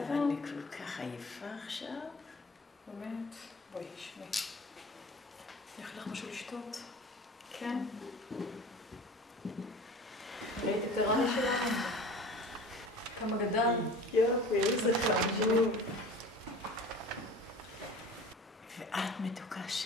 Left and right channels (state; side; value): normal; both; correlation 0.40